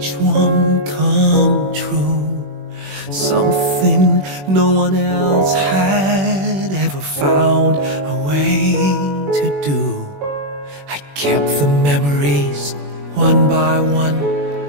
one come true. Something no one else had ever found a way to do. I kept the memories one by one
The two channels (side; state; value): left; late; 21 ms